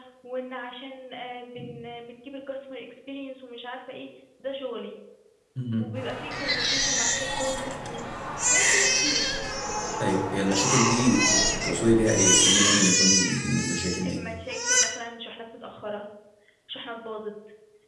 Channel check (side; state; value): both; identical; correlation 1.00